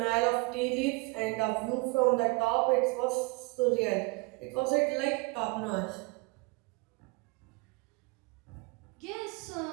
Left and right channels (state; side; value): quieter; left; 26.7 dB